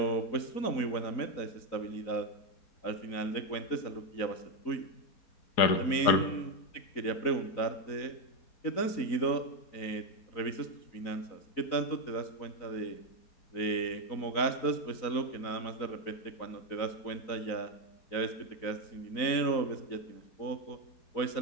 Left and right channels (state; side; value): late; right; 4.0 ms